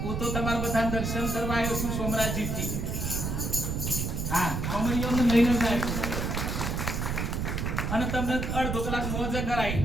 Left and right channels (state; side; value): noise; right; rumble, 1 dB below the sound